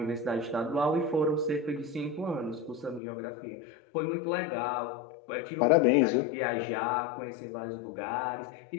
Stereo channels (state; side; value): drops out; right; at 3.0 s